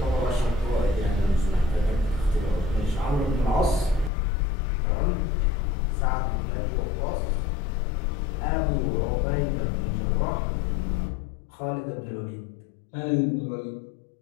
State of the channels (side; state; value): right; drops out; at 4.1 s